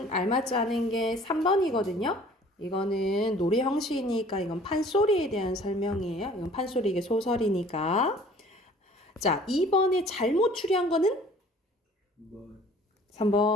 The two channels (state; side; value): normal; both; correlation 0.51